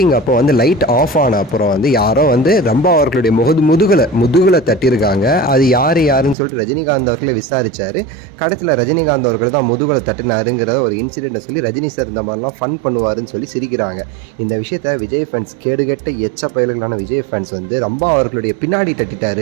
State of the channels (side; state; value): left; drops out; at 6.4 s